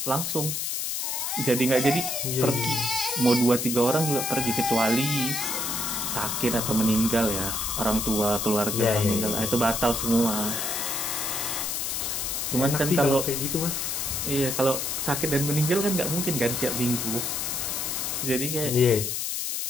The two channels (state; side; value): noise; left; hiss, 1 dB below the sound